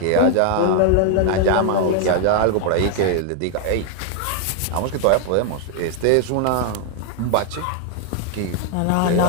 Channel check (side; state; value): both; different; correlation 0.00